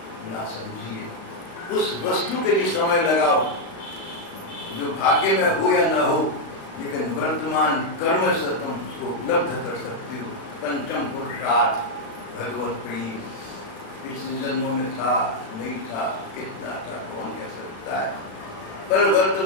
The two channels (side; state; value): right; late; 36 ms